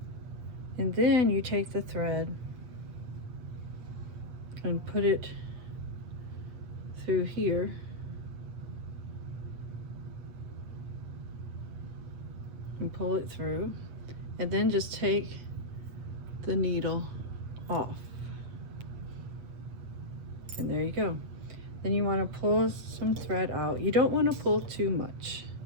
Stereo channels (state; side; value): late; left; 8.1 ms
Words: and then you take the thread and put it through here, and pull it through, and then just take the needle off. And there you go. Then you want to pull some thread out. You don't want to pull too much,